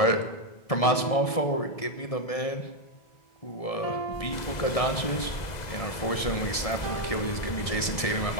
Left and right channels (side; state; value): right; late; 1.7 ms